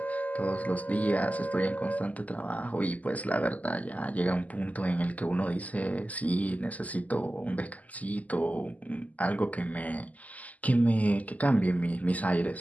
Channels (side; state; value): right; late; 0.075 ms